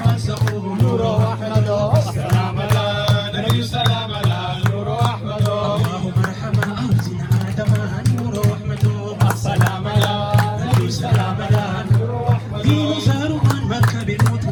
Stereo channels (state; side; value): identical; both; correlation 1.00